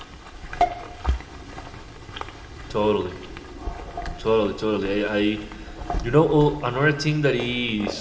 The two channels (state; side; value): identical; both; correlation 1.00